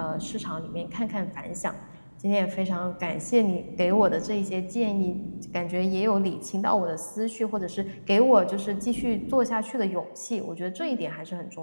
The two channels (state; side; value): inverted; both; correlation -1.00